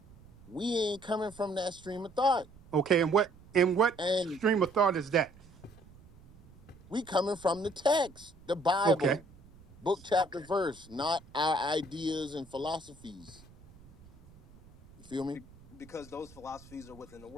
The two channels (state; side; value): noise; right; rumble, 23 dB below the sound